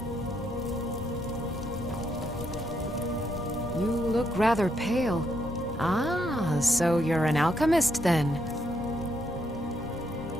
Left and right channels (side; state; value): both; normal; correlation 0.77